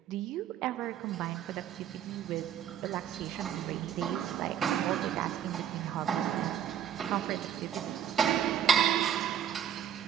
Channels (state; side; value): quieter; left; 9.5 dB